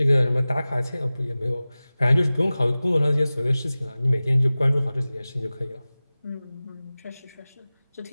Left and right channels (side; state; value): both; inverted; correlation -0.97